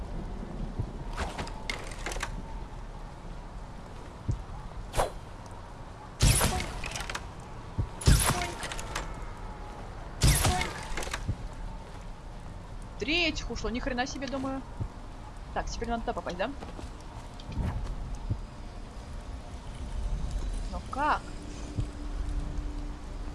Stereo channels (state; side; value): identical; both; correlation 1.00